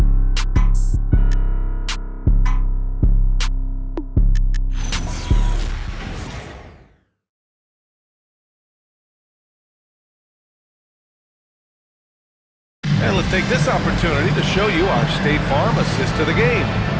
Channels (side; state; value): both; identical; correlation 1.00